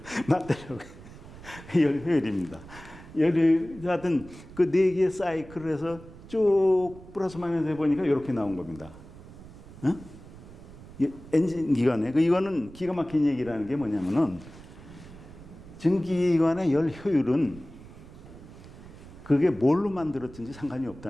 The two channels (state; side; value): noise; right; rumble, 18 dB below the sound